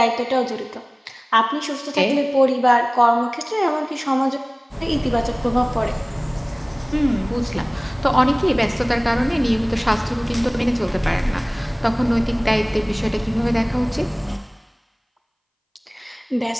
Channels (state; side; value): identical; both; correlation 1.00